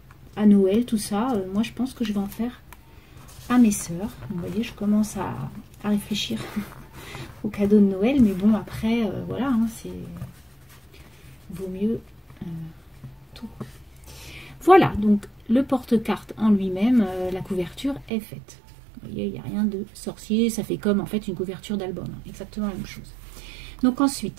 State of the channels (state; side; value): drops out; left; at 18.1 s